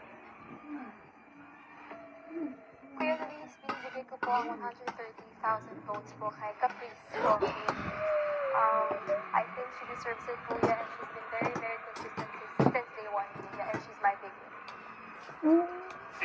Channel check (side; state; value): both; identical; correlation 1.00